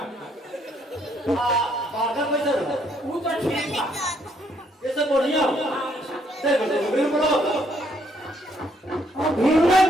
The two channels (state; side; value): normal; both; correlation 0.70